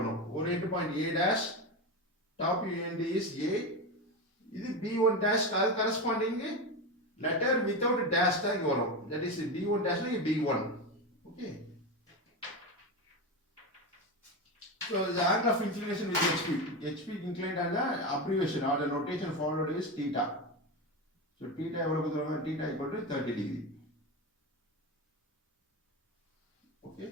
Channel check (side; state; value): both; normal; correlation 0.18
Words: ஒரு end point A dash, top end is A. இது B1 dash அது corresponding letter without dash தான் இங்க வரும். That is B1 dash னா B1. Okay. So the angle of inclination with HP. HP inclined angle abbreviation or the notation followed is theta. So theta எவ்வளவு கொடுத்திருக்காங்க? Theta equal to 30 degree. Okay.